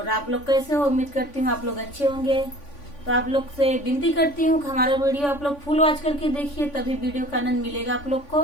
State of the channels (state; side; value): late; right; 3.5 ms